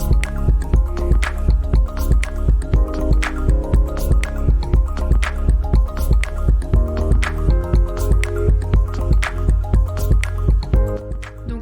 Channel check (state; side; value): identical; both; correlation 1.00